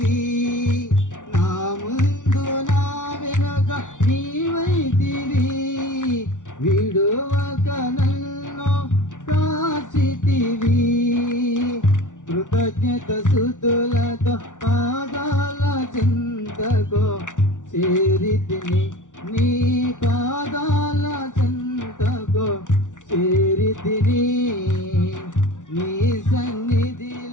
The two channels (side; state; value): right; late; 0.87 ms